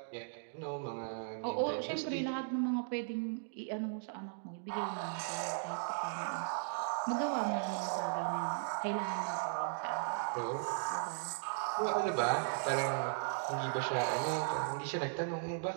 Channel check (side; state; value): left; silent; digital silence